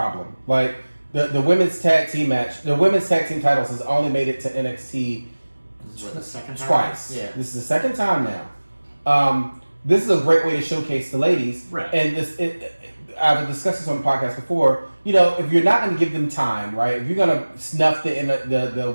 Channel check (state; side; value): inverted; both; correlation -1.00